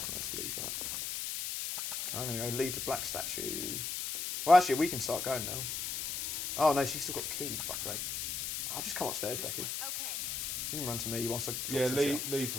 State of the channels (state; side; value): noise; left; hiss, 3 dB below the sound